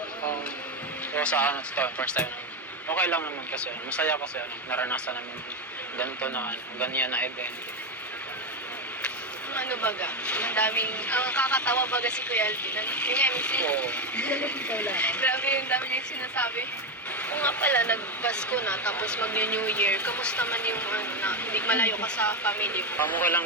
O sa ano, ito, first time namin. Okay lang naman kasi, masaya kasi naranasan namin ganito na, ganyan na event. Ano baga? Ang daming, ang kakatawa baga si Kuya Alvin. Yung MC. Oo. Grabe yung dami niya sinasabi. Kung nga pala, nag-Pasko na, tapos mag-New Year, kamusta man yung ano, na hindi malayo ka sa family mo? Pamukha lang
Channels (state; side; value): normal; both; correlation 0.11